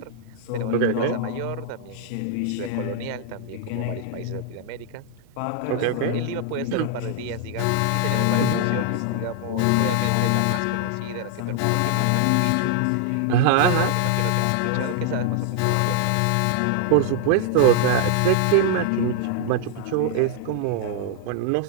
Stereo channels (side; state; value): both; different; correlation 0.00